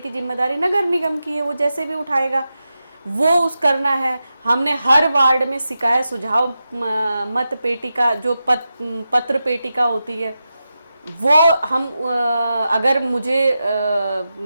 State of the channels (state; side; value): inverted; both; correlation -0.91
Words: जिम्मेदारी नगर निगम की है, वो जैसे भी उठाएगा वो उस करना है। हमने हर वार्ड में शिकायत सुझाव मत पेटिका जो पत्र पेटिका होती है वो हम अगर मुझे